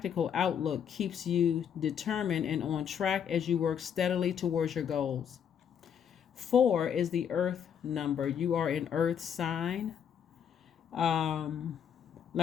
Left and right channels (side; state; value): right; quieter; 8.2 dB